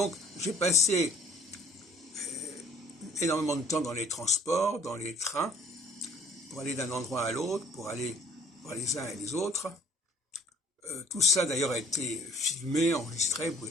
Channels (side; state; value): both; normal; correlation 0.54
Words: j'ai passé énormément de temps dans les transports, dans les trains, pour aller d'un endroit à l'autre, pour aller voir les uns et les autres. Tout ça d'ailleurs a été filmé, enregistré, vous